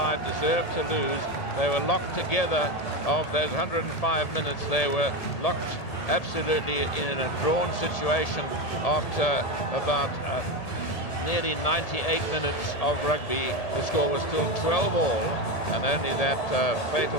deserved to lose. They were locked together. Of those 105 minutes, they were locked absolutely in a drawn situation after about nearly 98 minutes of rugby. The score was still 12-all, and only that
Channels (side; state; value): right; late; 1.8 ms